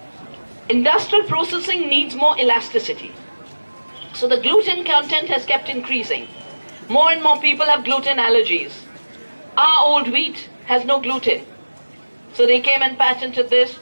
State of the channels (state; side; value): inverted; both; correlation -1.00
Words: Industrial processing needs more elasticity. So the gluten content has kept increasing. More and more people have gluten allergies. Our old wheat has no gluten. So they came and patented this.